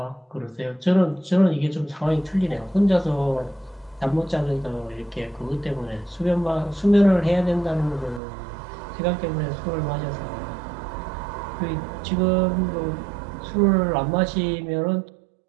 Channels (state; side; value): drops out; left; at 8.2 s